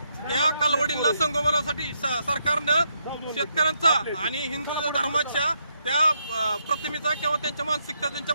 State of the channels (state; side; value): inverted; both; correlation -0.78